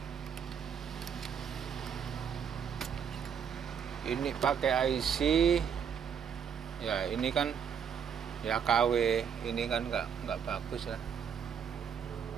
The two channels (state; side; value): quieter; left; 7.5 dB